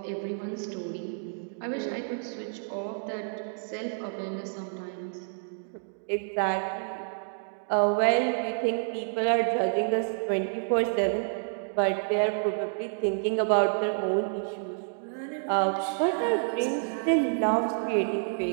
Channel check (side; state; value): left; silent; digital silence